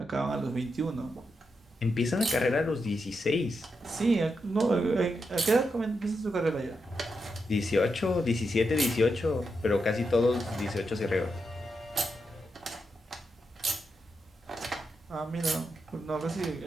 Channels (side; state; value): both; normal; correlation 0.85